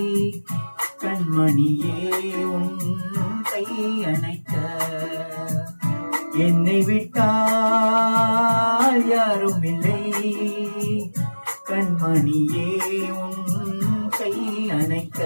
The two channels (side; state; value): both; inverted; correlation -1.00